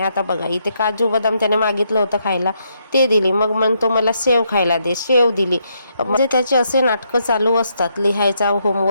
आता बघा इथे काजू बदाम त्याने मागितलं होतं खायला, ते दिली. मग म्हणतो मला सेव खायला दे, सेव दिली. म्हणजे त्याचे असे नाटकं चालू असतात. लिहायचा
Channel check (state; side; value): inverted; both; correlation -0.76